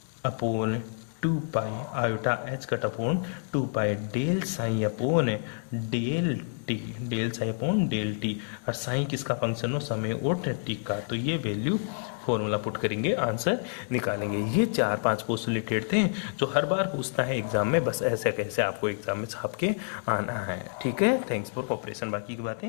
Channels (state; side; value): silent; right; digital silence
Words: upon 2 pi, iota H cut upon 2 pi del psi upon del T, del psi upon del T. और साइन किसका फंक्शन हो? समय और टी का। तो ये वैल्यू फॉर्मूला पुट करेंगे, आंसर निकालेंगे। ये 4-5 पोस्टुलेटेड थे जो हर बार पूछता है एग्जाम में, बस ऐसे कैसे आपको एग्जाम में छाप के आना है। ठीक है, थैंक्स फॉर कोऑपरेशन। बाकी की